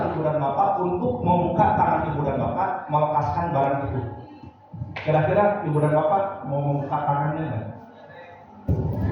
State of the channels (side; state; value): both; identical; correlation 1.00